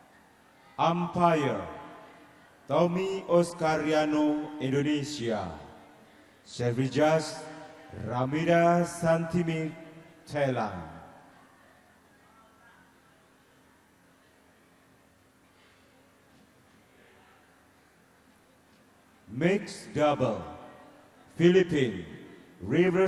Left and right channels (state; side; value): identical; both; correlation 1.00